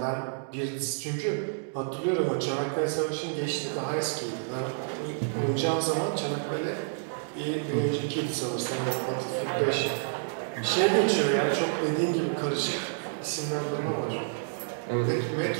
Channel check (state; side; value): silent; left; digital silence